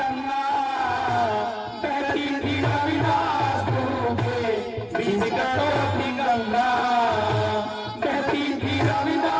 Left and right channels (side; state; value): both; identical; correlation 1.00